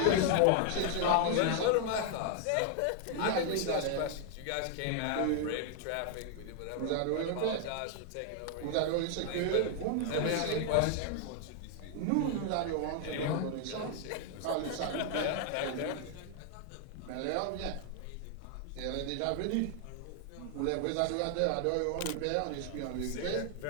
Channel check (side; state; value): both; different; correlation 0.00